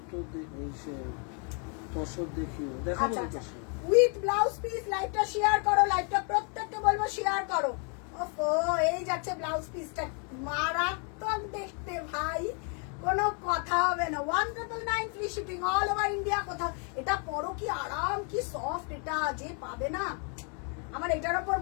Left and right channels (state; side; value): quieter; right; 38.5 dB